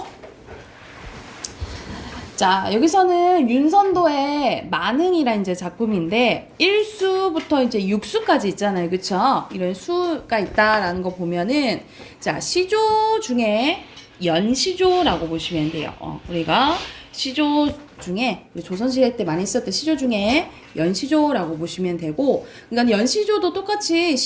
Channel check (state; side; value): identical; both; correlation 1.00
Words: 자, 여기서는 윤선도의 만흥이라는 이제 작품인데 1수부터 이제 6수까지 있잖아요. 그쵸? 이런 수가 있다라는 거 보면은 자, 시조 중에 연시조라고 보시면 돼요. 우리가 시조 중에 조선시대 때 많이 썼던 시조 중에 연시조라고 보시면 되고, 그러니까 연시조도 똑같이